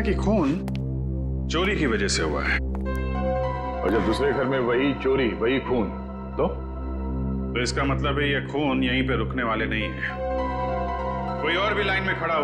कि खून चोरी की वजह से हुआ है, और जब दूसरे घर में वही चोरी वही खून तो इसका मतलब है ये खून यहीं पे रुकने वाले नहीं है, कोई और भी लाइन में खड़ा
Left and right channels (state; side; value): identical; both; correlation 1.00